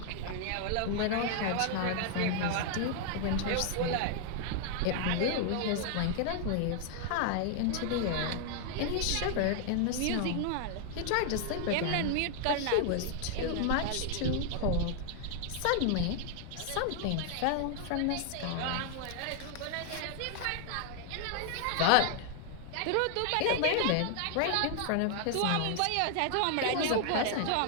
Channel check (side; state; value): both; different; correlation 0.00